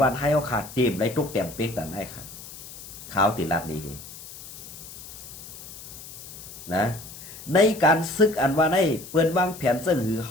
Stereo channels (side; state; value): left; noise; hiss, 14 dB below the sound